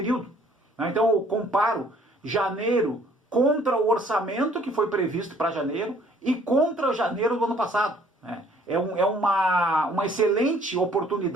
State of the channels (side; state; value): both; normal; correlation 0.59